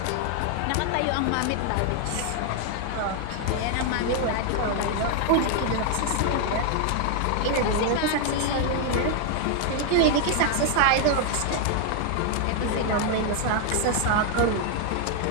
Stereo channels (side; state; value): both; different; correlation 0.00